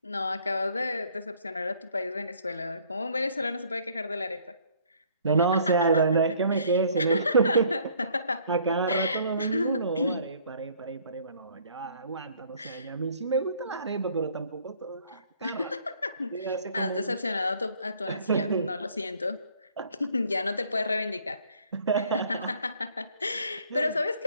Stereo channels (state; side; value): inverted; both; correlation -0.59